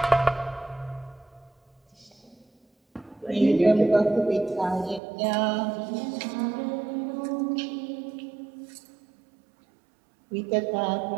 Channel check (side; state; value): left; drops out; at 5.0 s